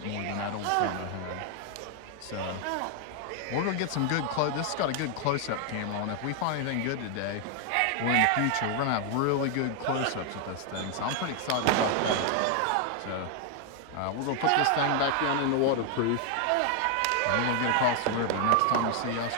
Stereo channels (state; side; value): different; both; correlation 0.00